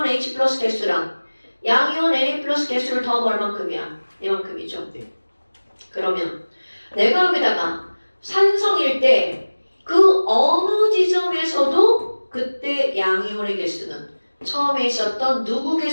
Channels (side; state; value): both; inverted; correlation -1.00